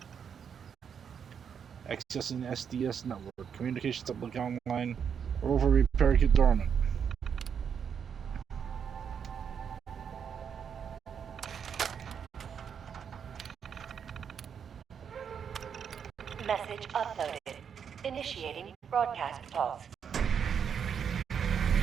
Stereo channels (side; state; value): left; quieter; 7.4 dB